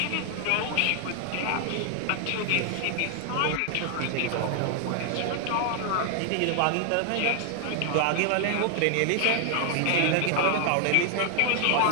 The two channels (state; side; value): different; both; correlation 0.00